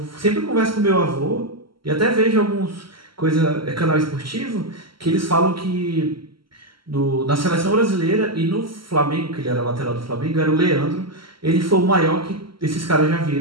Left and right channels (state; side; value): late; left; 0.74 ms